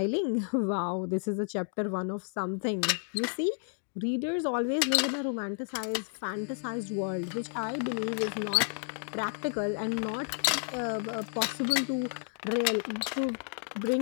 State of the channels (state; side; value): silent; right; 56 dB below the other